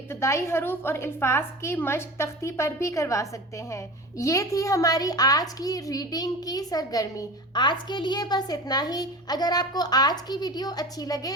हरूफ और अल्फाज की मश्क तख्ती पर भी करवा सकते हैं। ये थी हमारी आज की रीडिंग की सरगर्मी। आज के लिए बस इतना ही। अगर आपको आज की वीडियो अच्छी लगे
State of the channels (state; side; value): normal; both; correlation 0.33